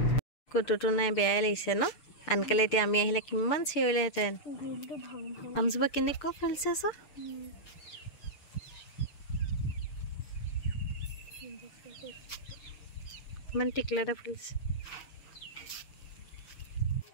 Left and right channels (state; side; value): late; right; 6.7 ms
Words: কুটুটো নাই বেয়াই লাগিছে ন আনকালে এতিয়া আমি আহিলে কিমান চিঞৰিলেহেঁতেন আমজোপা কেনেকুৱা ফুলিছে চ ইমান টিকলা এটা ফুলিছে